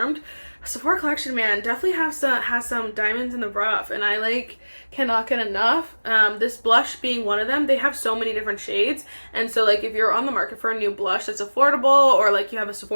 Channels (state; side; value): inverted; both; correlation -1.00